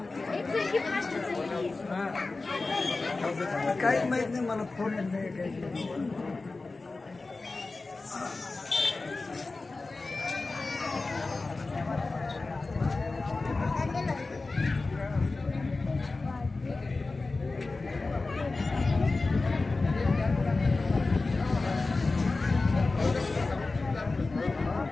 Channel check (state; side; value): quieter; right; 3.5 dB